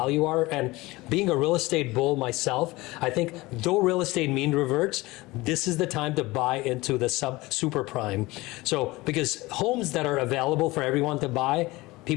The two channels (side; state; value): right; quieter; 20.9 dB